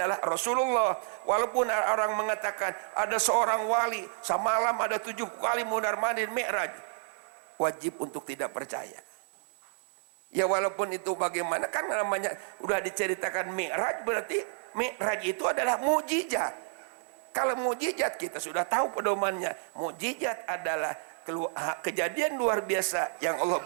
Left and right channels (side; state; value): left; silent; digital silence